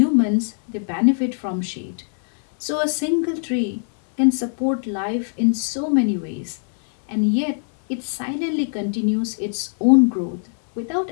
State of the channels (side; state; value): right; silent; 63 dB below the other